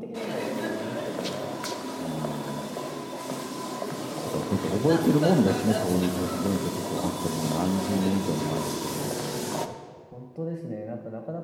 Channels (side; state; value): both; identical; correlation 1.00